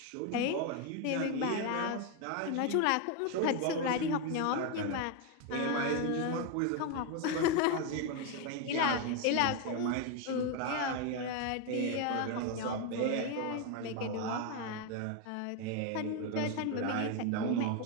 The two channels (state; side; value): different; both; correlation 0.01